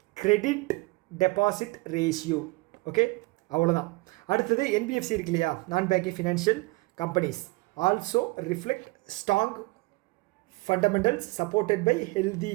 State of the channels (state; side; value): quieter; left; 23.8 dB